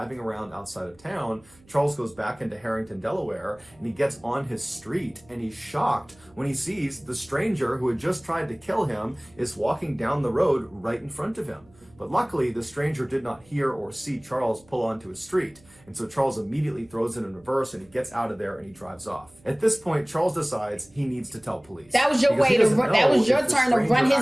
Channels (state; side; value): noise; right; hum, 29 dB below the sound